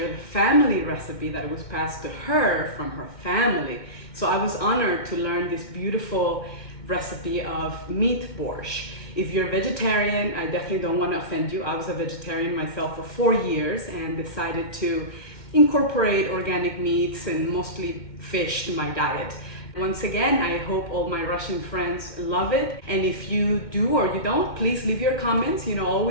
the family recipe that was passed to her from her family. So I was honored to learn this beautiful recipe of meat borscht. If you're vegetarian, I definitely don't want to offend you. I was a vegetarian myself for 4 years and decided to incorporate organic meats and mostly fish to my diet. Once again, I hope all my Russian friends love it. And if you do or you don't, please leave your comments.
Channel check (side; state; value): right; late; 2.2 ms